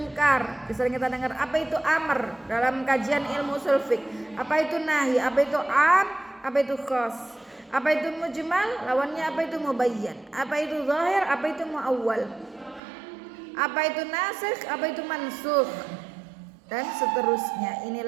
Sering kita dengar apa itu amar dalam kajian ilmu usul fiqh. Apa itu nahi, apa itu am, apa itu khas. Apa itu mujmal, lawannya apa itu mubayyan. Apa itu zahir, apa itu muawwal. Apa itu nasikh, apa itu mansukh. Dan seterusnya.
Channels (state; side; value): drops out; left; at 12.8 s